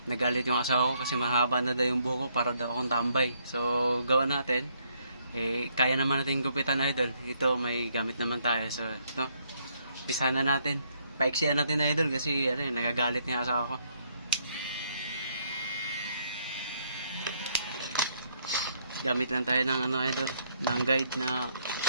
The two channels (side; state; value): both; inverted; correlation -0.71